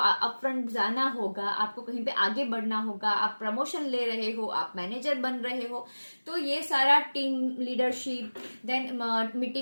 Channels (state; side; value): inverted; both; correlation -1.00